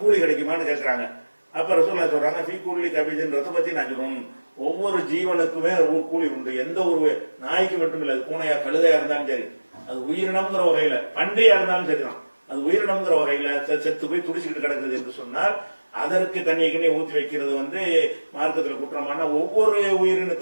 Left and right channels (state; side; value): inverted; both; correlation -1.00